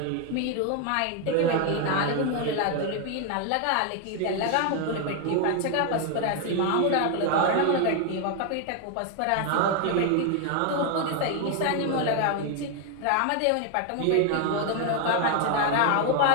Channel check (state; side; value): different; both; correlation 0.01